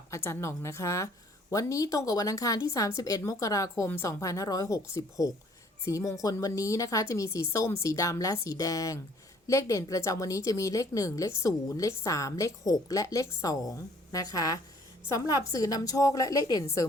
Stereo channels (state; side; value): normal; both; correlation 0.59